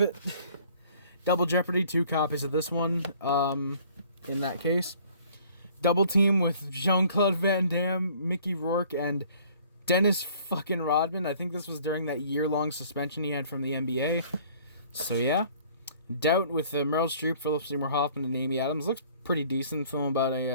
it. Double Jeopardy, 2 copies of this one, in that case. Double Team with Jean-Claude Van Damme, Mickey Rourke, and Dennis fucking Rodman. I think this was during that year-long suspension he had from the NBA. So, yeah. Doubt with Meryl Streep, Philip Seymour Hoffman, and Amy Adams. Looks pretty decent. Film about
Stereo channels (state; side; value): inverted; both; correlation -0.55